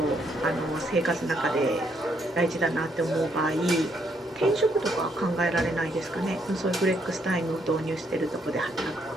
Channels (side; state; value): both; normal; correlation 0.73